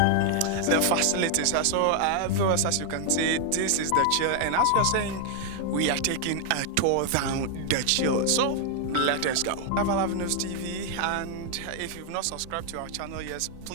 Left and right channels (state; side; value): different; both; correlation 0.00